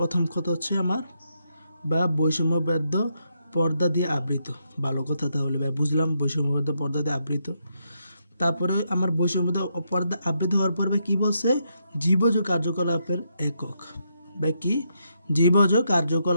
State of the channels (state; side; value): inverted; both; correlation -0.80